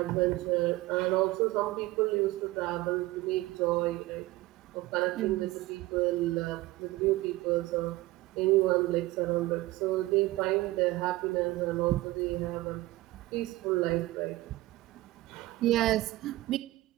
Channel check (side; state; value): left; quieter; 18.8 dB